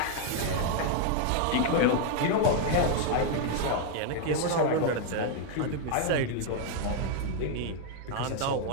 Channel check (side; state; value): both; different; correlation 0.00